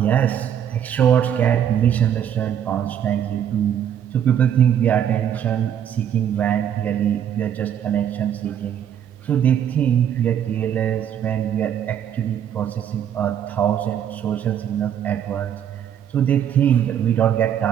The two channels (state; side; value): quieter; left; 9.4 dB